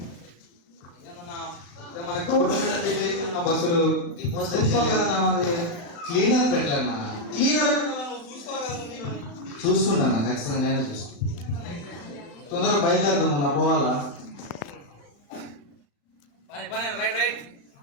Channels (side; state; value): right; late; 35 ms